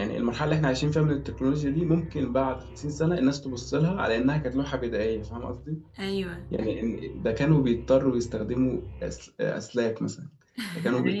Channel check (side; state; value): both; identical; correlation 1.00